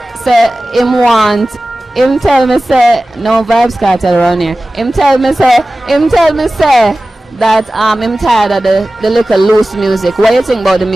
say him tell me say no Vibes Cartel around here. Him tell me say that him tired of the little loose music. What do you think about the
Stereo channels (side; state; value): both; normal; correlation 0.96